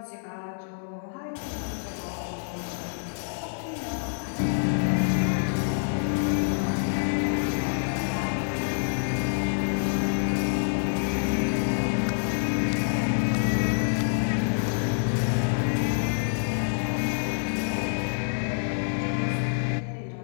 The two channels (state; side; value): silent; right; digital silence